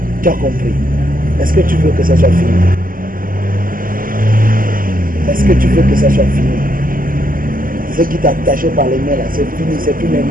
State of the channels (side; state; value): left; late; 0.41 ms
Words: Tu as compris. Est-ce que tu veux que ça soit fini? Est-ce que tu veux que ça soit fini? Ce qui t'a attaché par les mains là, c'est fini. C'est plus les